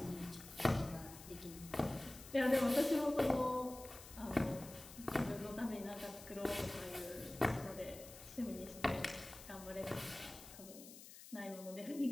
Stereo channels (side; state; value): left; noise; hiss, 16 dB below the sound